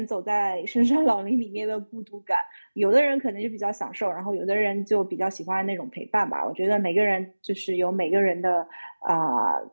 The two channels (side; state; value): both; inverted; correlation -1.00